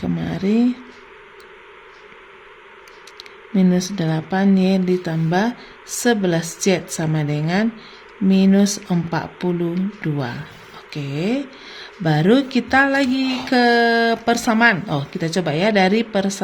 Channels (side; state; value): both; identical; correlation 1.00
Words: kemari, minus 8Y ditambah 11Z sama dengan minus 42. Oke. Baru kita lagi ke persamaan. Kita coba ya, dari